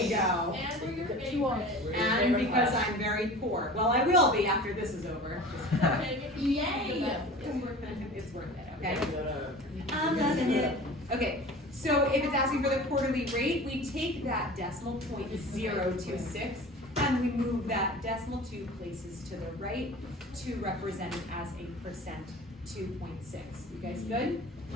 you go. And we're your favorite. And because I'm very poor. Well, I will be after this is over. Okay, Yay. it's worth it. It's worth it, okay? I'm loving it. Okay, so if it's asking for the quarterly rate, we take that decimal point 026 and we move that decimal 2 places to the right to represent it as a percent 2.6. You guys good?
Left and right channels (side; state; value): both; normal; correlation 0.38